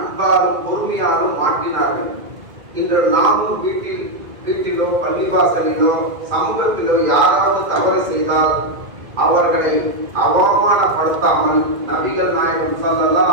பொறுமையாலும் மாற்றினார்கள். இன்று நாமும் வீட்டிலோ பள்ளிவாசலிலோ சமூகத்திலோ யாராவது தவறு செய்தால் அவர்களை அவமானப்படுத்தாமல் நபிகள் நாயகம் ஸல்லல்லாஹு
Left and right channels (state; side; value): late; left; 2.1 ms